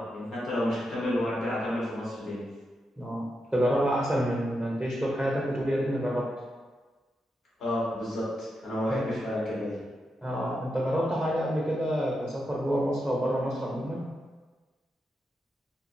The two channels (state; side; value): normal; both; correlation 0.86